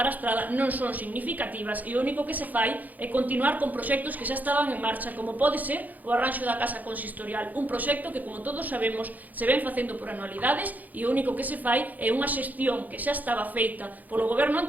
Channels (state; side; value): late; left; 0.081 ms